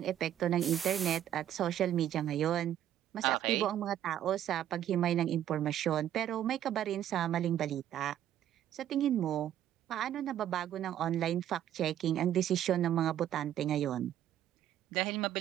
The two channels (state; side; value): quieter; left; 11.2 dB